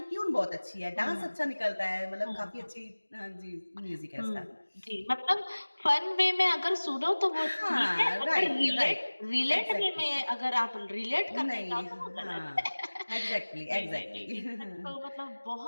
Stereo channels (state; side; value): inverted; both; correlation -1.00